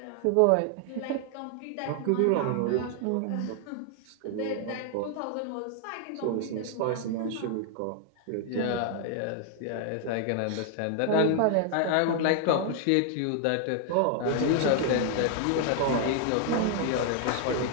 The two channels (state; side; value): different; both; correlation 0.00